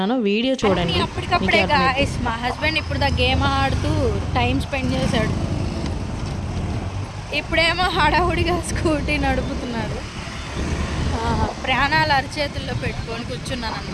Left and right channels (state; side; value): identical; both; correlation 1.00